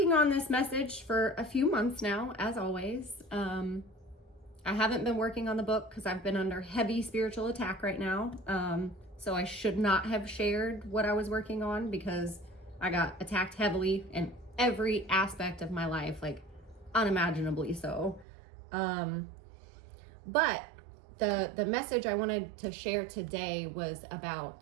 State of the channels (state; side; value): drops out; left; at 18.2 s